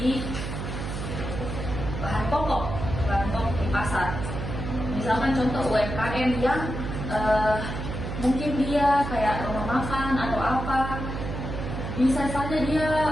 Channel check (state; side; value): noise; right; hum, 5 dB below the sound